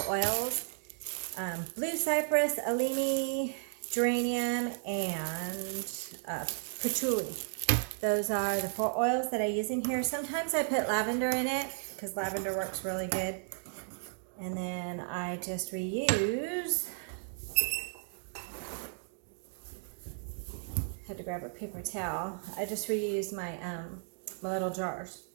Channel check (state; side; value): silent; left; digital silence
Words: oils. Blue cypress, alimi, geranium, and patchouli. Those are the 4 oils that I use in here. Sometimes I put lavender in it because lavender works really good. And then I just reuse. Had to grab a paper towel. I just reuse my my little jars,